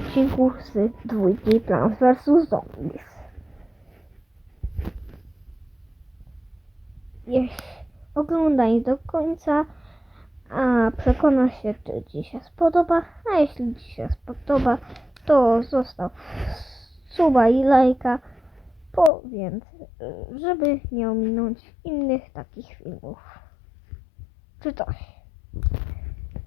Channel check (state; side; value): drops out; right; at 19.1 s